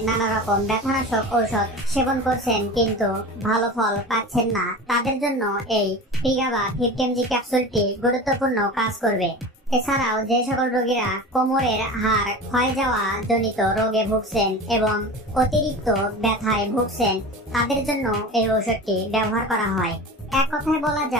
নানা রকম ব্যথানাশক ঔষধ সেবন করছেন কিন্তু ভালো ফল পাচ্ছেন না, তাদের জন্য এই প্রিগাবা 50 mg ক্যাপসুলটি গুরুত্বপূর্ণ কাজ করবে। এছাড়াও যে সকল রোগীরা কোমরের হাড় ক্ষয় যাওয়া জনিত রোগে ভুগছেন এবং অতিরিক্ত ব্যথায় ভুগছেন তাদের জন্য এই ঔষধটি ব্যবহার করা হয়। এক কথায় বলা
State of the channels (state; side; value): normal; both; correlation 0.33